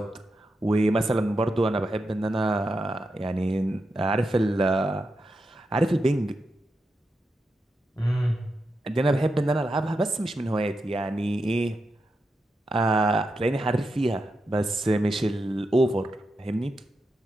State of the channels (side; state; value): both; normal; correlation 0.87